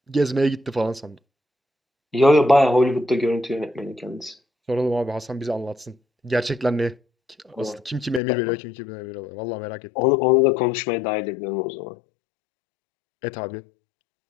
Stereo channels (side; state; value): right; drops out; at 8.2 s